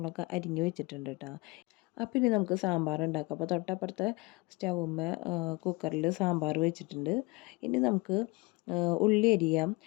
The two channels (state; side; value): quieter; right; 25.1 dB